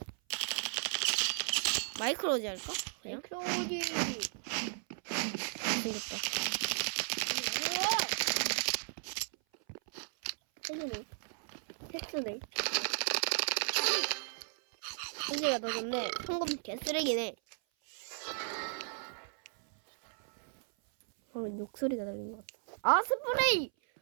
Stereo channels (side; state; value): left; silent; 54 dB below the other